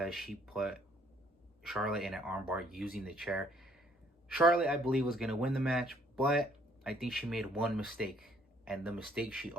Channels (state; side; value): normal; both; correlation 0.63